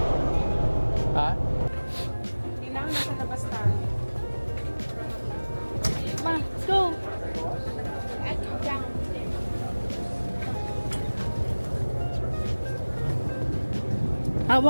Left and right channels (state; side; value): inverted; both; correlation -1.00